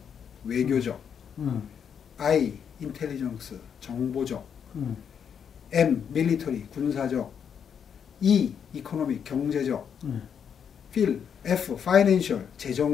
외교적, I 인텔리전스 정보적, M 밀리터리 군사적, E 이코노믹 경제적, F 파이낸셜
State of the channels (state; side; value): quieter; right; 7.6 dB